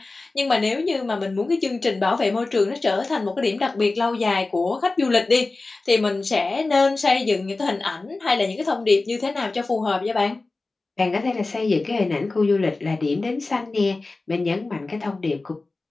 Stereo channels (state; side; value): quieter; right; 3.4 dB